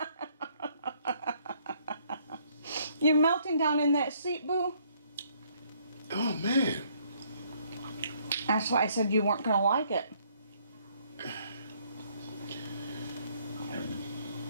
You're melting down in that seat, Boo. Oh man. That's why I said you weren't gonna like it.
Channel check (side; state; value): both; inverted; correlation -0.66